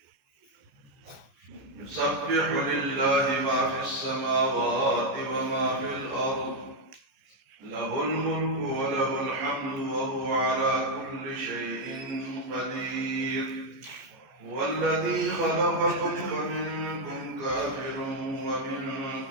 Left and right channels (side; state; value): left; late; 14 ms